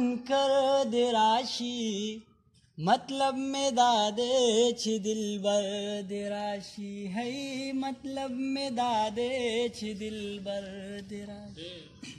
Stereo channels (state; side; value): identical; both; correlation 1.00